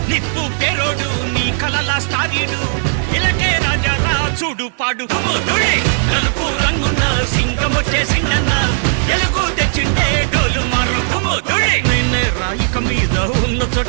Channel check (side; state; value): left; silent; digital silence